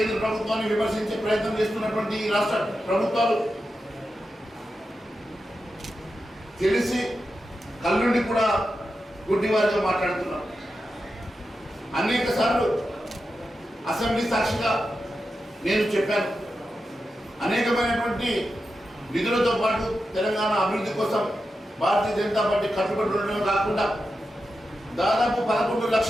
ప్రభుత్వాన్ని విమర్శించే ప్రయత్నం చేస్తున్నటువంటి ఈ రాష్ట్ర ప్రభుత్వాలు తెలిసి కళ్ళుండి కూడా గుడ్డివారిగా మాట్లాడుతున్నారు. అనేక సార్లు అసెంబ్లీ సాక్షిగా నేను చెప్పాను, అనేకమైనటువంటి నిధులతో పాటు తెలంగాణ అభివృద్ధి కోసం భారతీయ జనతా పార్టీ కట్టుబడి ఉండడం కాకుండా దాదాపు 11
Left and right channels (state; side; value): normal; both; correlation 0.90